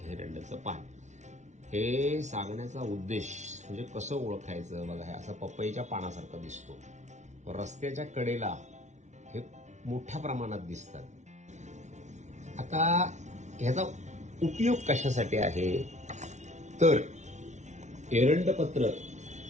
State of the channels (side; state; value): left; late; 0.34 ms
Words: एरंडाचं पान. हे सांगण्याचा उद्देश म्हणजे कसं ओळखायचं बघा, हे असं पपईच्या पानासारखं दिसतो. रस्त्याच्या कडेला हे मोठ्या प्रमाणात दिसतात. आता ह्याचा उपयोग कशासाठी आहे तर एरंडपत्र